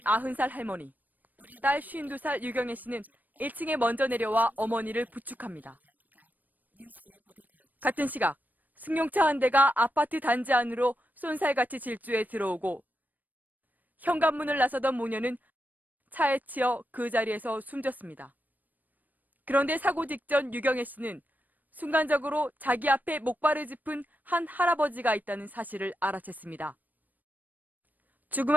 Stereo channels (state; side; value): late; left; 0.085 ms